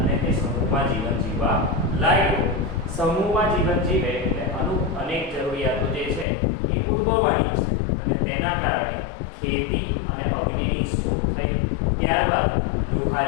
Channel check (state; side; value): drops out; right; at 6.2 s